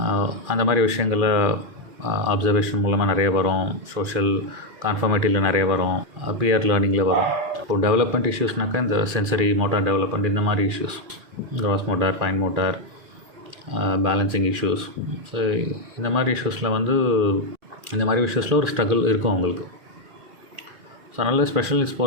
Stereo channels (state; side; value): late; left; 2.4 ms